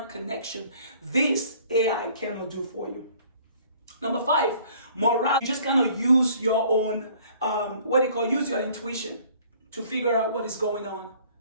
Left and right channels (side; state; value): both; inverted; correlation -0.56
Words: connection. This AI cannot do for you. Number 5, morale. You just cannot use your own, use your intuition to figure out what is going on.